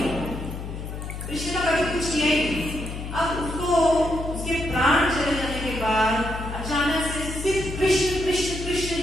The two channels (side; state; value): left; noise; hum, 7 dB below the sound